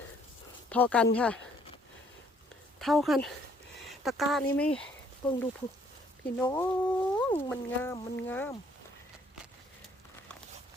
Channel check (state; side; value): normal; both; correlation 0.64